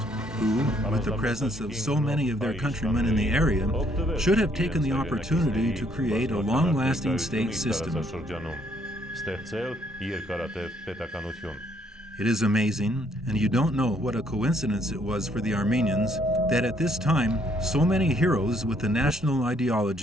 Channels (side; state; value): both; normal; correlation 0.68